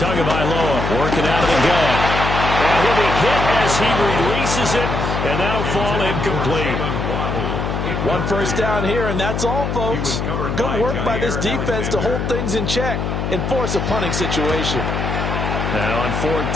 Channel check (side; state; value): left; noise; hum, 2 dB below the sound